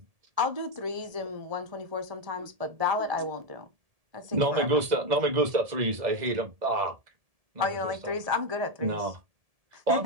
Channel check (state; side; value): late; left; 1.7 ms